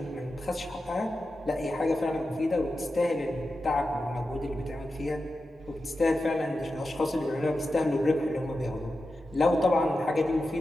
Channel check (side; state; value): both; normal; correlation 0.91